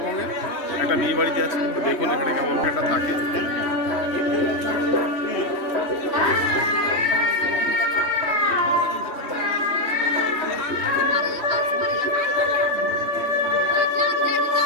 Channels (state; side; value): late; right; 3.2 ms